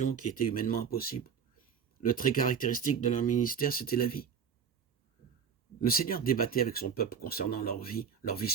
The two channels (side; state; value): left; quieter; 7.1 dB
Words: qui étaient humainement impossibles. Le trait caractéristique de leur ministère, c'était la vie. Le Seigneur débattait avec son peuple concernant leur vie